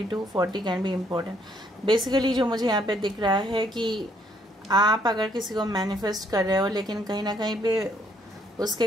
40 कैन बी इम्पोर्टेंट। बेसिकली जो मुझे यहाँ पे दिख रहा है कि आप अगर किसी को मैनिफेस्ट कर रहे हो, लेकिन कहीं ना कहीं पे उसके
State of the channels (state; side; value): normal; both; correlation 0.68